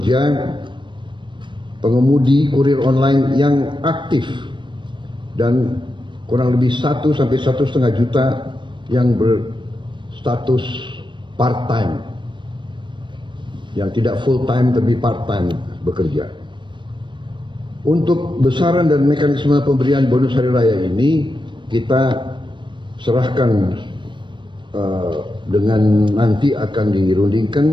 pengemudi kurir online yang aktif dan kurang lebih 1 sampai 1,5 juta yang berstatus part-time, yang tidak full-time tapi part-time bekerja. Untuk besaran dan mekanisme pemberian bonus hari raya ini kita serahkan dengan nanti akan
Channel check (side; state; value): left; late; 0.23 ms